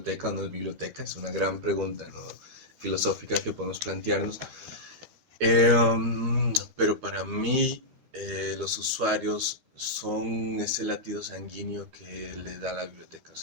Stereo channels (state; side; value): late; left; 12 ms